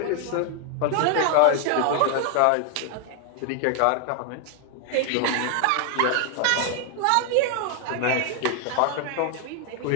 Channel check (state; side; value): different; both; correlation 0.00